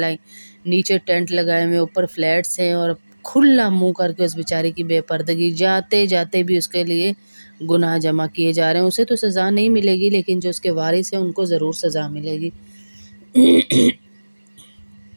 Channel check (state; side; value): inverted; both; correlation -1.00